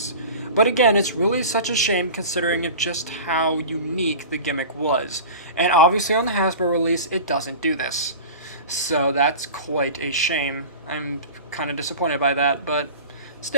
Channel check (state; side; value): inverted; both; correlation -0.35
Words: But again, it's really such a shame considering of just how unique the gimmick was. And obviously on the Hasbro release, it doesn't do this. So that's quite a shame. I'm kind of disappointed by that, but